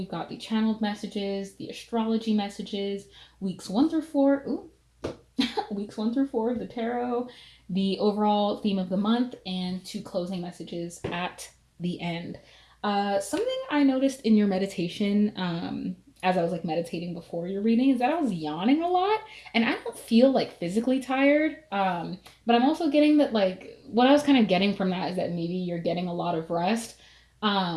got the channeled messages, the astrology messages, weeks 1 through 4. Weeks 1 through 4 of the tarot, the overall theme of the month, and 2 closing messages at the end. Something I noticed in your meditation, as I was like meditating before your reading, is that I was yawning a lot, and I don't feel like physically tired. But I'm also getting that like what I was kind of getting from that is that maybe you're getting a lot of rest,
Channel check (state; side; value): identical; both; correlation 1.00